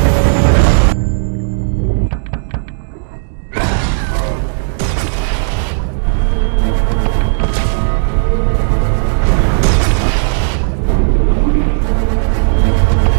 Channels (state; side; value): silent; left; digital silence